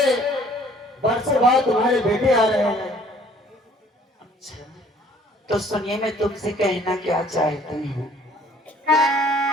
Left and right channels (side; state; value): both; normal; correlation 0.57